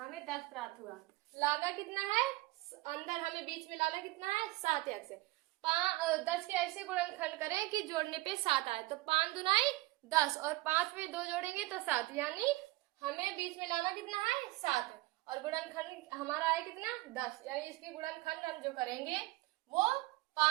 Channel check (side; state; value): left; quieter; 20.3 dB